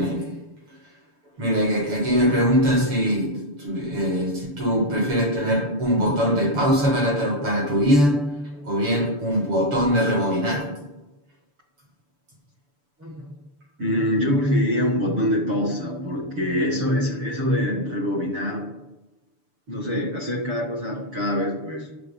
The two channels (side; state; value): left; late; 6.9 ms